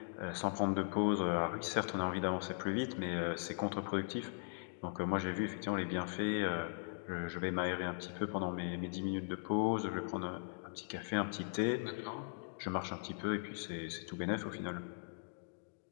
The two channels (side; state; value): right; silent; digital silence